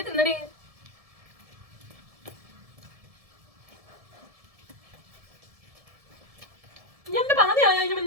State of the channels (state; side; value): late; left; 1.7 ms